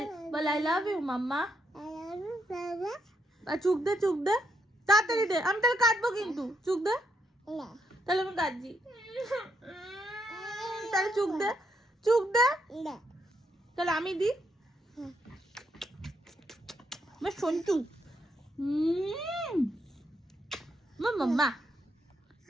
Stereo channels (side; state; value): both; normal; correlation 0.77